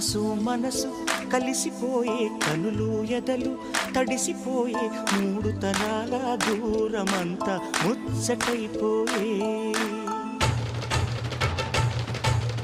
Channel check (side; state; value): both; identical; correlation 1.00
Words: మనసు కలిసిపోయే కనులు ఎదలు తడిసిపోయే మూడు తరాల దూరమంతా ముచ్చటైపోయే